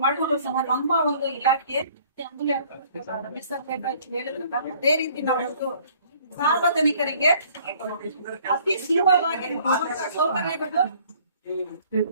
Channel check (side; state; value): both; inverted; correlation -0.57